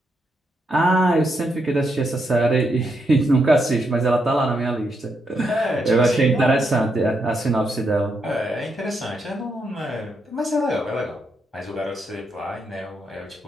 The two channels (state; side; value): normal; both; correlation 0.80